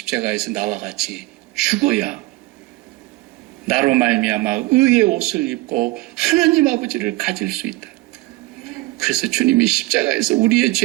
나와 같이 죽어야 나로 말미암아 의의 옷을 입고 하나님 아버지를 가질 수 있다. 그래서 주님이 십자가에서 우리의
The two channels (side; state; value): left; quieter; 20.4 dB